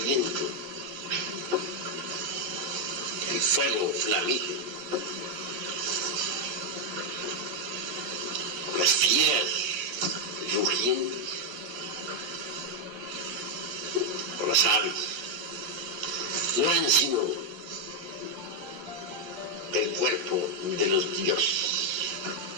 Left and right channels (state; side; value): late; left; 11 ms